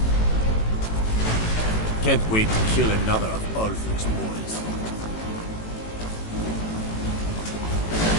Can't wait to kill another of Ulfric's boys.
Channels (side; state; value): right; late; 18 ms